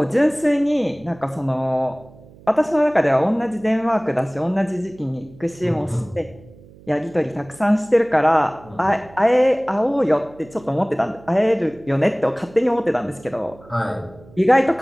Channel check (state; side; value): noise; right; hum, 23 dB below the sound